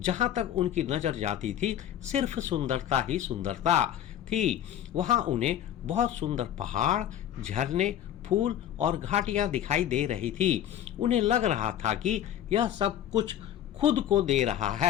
तक उनकी नजर जाती थी सिर्फ सुंदरता ही सुंदरता थी। वहां उन्हें बहुत सुंदर पहाड़, झरने, फूल और घाटियां दिखाई दे रही थी। उन्हें लग रहा था कि यह सब कुछ खुद को दे रहा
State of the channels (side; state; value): right; quieter; 10.8 dB